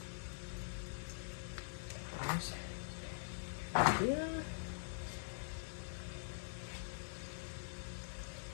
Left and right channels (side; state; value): right; silent; digital silence